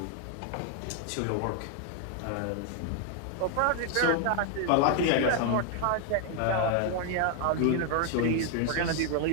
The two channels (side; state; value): both; different; correlation 0.00